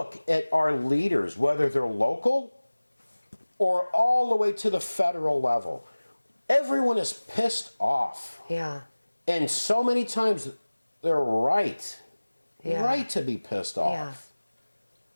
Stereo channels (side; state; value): both; inverted; correlation -1.00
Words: at our leaders, whether they're local or all the way to the federal level? Everyone is pissed off. Yeah, And so many times they're right. Yeah. Right to be pissed off. Yeah.